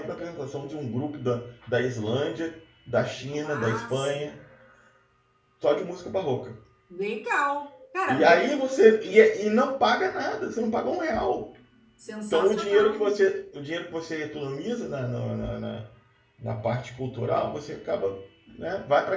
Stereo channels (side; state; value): both; identical; correlation 1.00